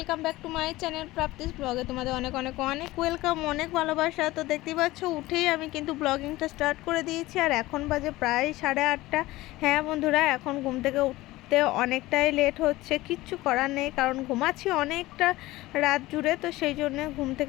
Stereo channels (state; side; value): quieter; right; 18.4 dB